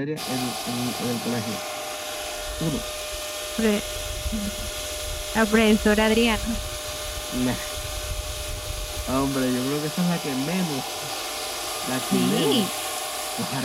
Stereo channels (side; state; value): both; identical; correlation 1.00